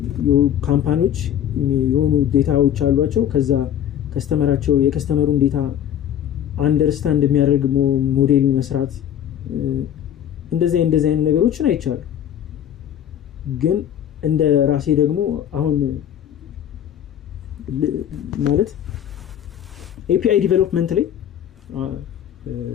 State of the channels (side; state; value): right; quieter; 10.1 dB